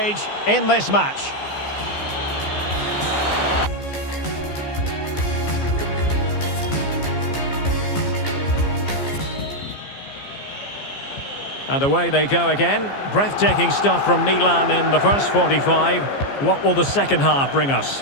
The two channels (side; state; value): right; late; 15 ms